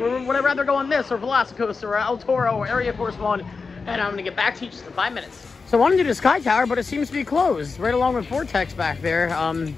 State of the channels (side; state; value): right; quieter; 4.6 dB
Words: I rather go on this or Velocicoaster or El Toro or Area Force One? And I'm going to get back to you just in 5 minutes. So I wanted to do the Sky Tower, but it seems to be closed, right along with Vortex back there.